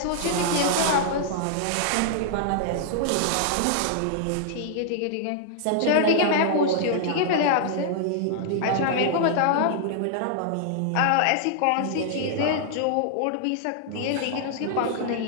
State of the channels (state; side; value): different; both; correlation -0.01